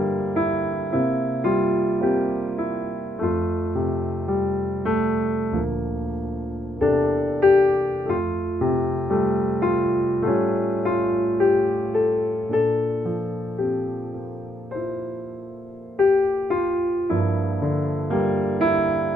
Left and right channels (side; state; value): both; normal; correlation 0.78